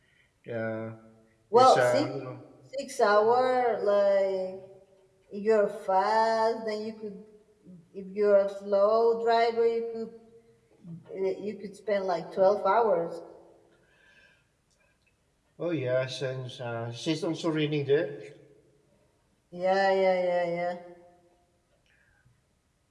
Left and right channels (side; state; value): both; identical; correlation 1.00